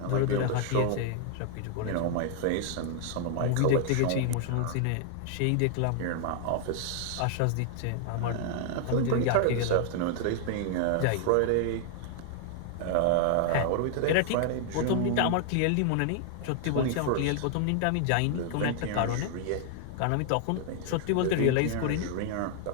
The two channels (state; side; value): different; both; correlation 0.00